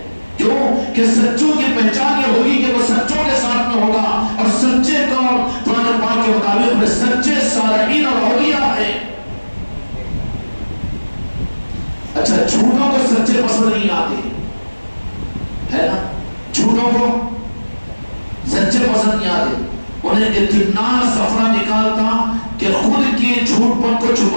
کیوں کہ سچوں کی پہچان یہ ہوگی کہ وہ سچوں کے ساتھ میں ہوگا، اور سچے کون؟ قرآن پاک کے مطابق میں سچے صالحین اور اولیاء ہیں۔ اچھا جھوٹوں کو سچے پسند نہیں آتے ہے نا، جھوٹوں کو سچے پسند نہیں آتے، انہیں اتنا سفرہ نکالتا کہ جھوٹ پن کو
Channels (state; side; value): inverted; both; correlation -1.00